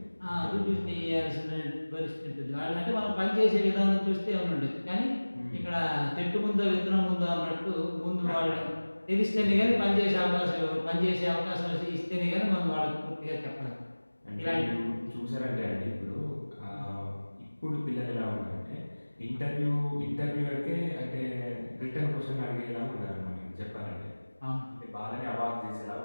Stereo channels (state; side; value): inverted; both; correlation -1.00